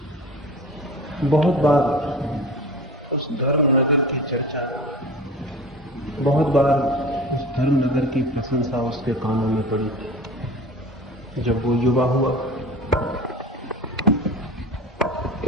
बहुत बार उस धर्म नगर की चर्चा, बहुत बार उस धर्म नगर की प्रशंसा उसके कानों में पड़ी। जब वो युवा हुआ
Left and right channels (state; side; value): normal; both; correlation 0.37